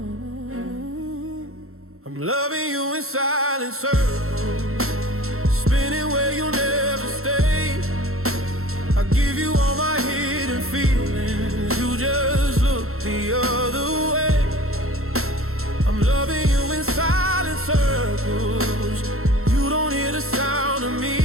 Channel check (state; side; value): late; left; 0.63 ms